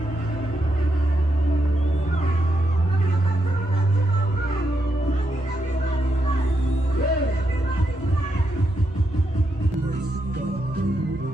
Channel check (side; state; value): both; normal; correlation 0.82